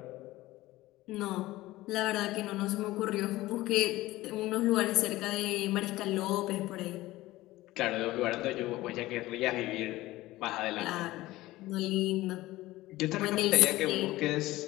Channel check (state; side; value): quieter; right; 17.7 dB